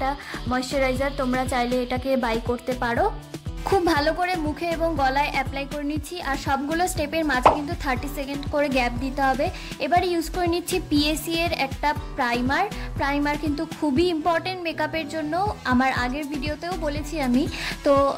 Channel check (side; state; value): both; identical; correlation 1.00